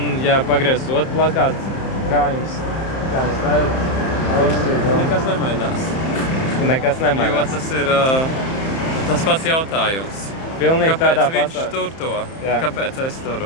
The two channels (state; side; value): late; right; 31 ms